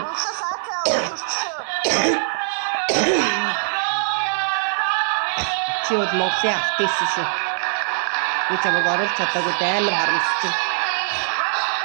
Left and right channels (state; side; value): silent; left; 57 dB below the other